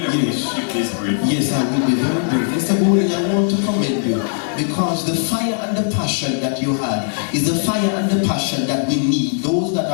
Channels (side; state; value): right; silent; 67 dB below the other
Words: that we should keep this brief. Yes, I will be very brief. Mr. Oldie, I want to commend you because the fire and the passion that you had is the fire and the passion that we need. Those that